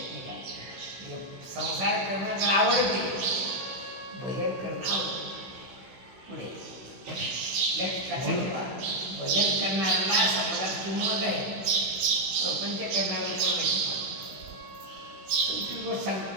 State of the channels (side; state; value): left; late; 16 ms